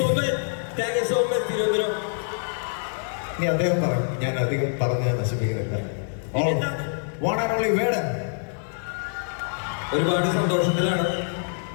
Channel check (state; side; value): silent; right; digital silence